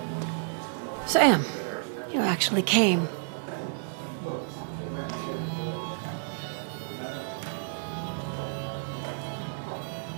Sam, you actually came.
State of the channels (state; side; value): silent; left; 58 dB below the other